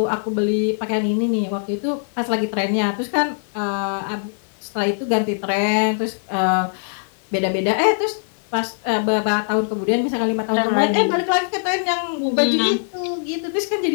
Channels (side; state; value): right; silent; digital silence